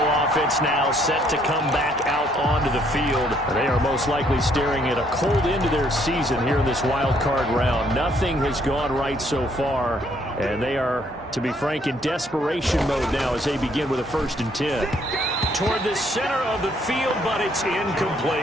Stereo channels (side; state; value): both; normal; correlation 0.67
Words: offense now set to come back out onto the field. They are most likely staring at a cold end to their season here in this wild card round. Nothing has gone right so far, and they are, to be frank, in desperation mode now as they begin with a 1st and 10. Toward the center of the field, but it's